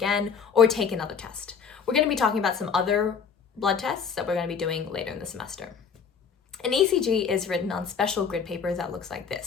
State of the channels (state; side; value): quieter; right; 6.3 dB